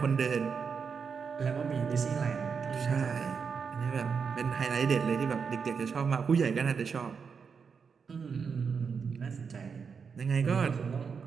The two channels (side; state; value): left; quieter; 5.9 dB